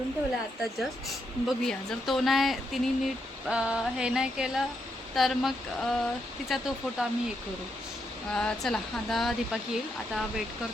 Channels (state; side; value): normal; both; correlation 0.80